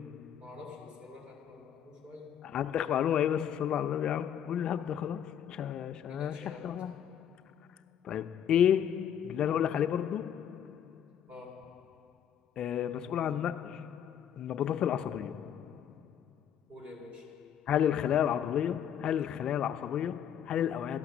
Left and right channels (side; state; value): right; quieter; 9.3 dB